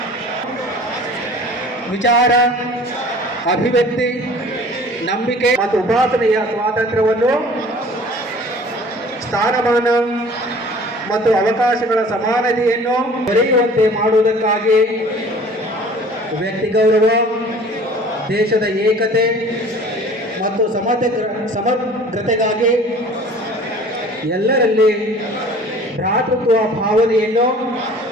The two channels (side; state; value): both; normal; correlation 0.47